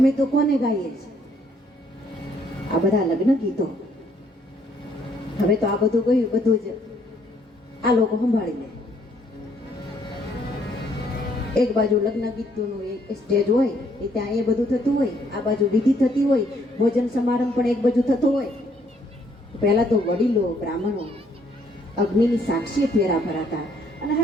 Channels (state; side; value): normal; both; correlation 0.67